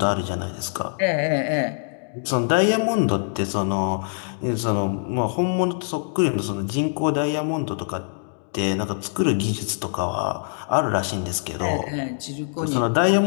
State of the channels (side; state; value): right; silent; digital silence